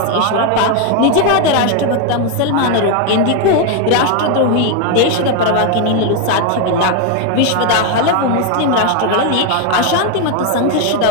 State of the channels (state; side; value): different; both; correlation 0.01